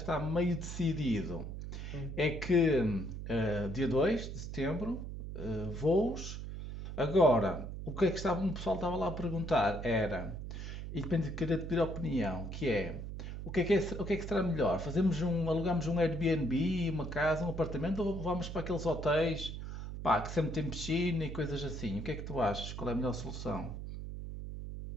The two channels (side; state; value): right; noise; hum, 7 dB below the sound